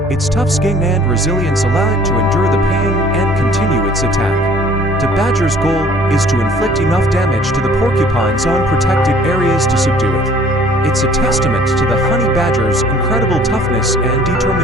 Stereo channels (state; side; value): normal; both; correlation 0.54